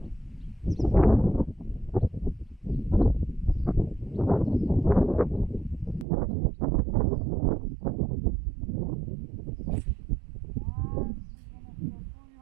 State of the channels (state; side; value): drops out; left; at 6.1 s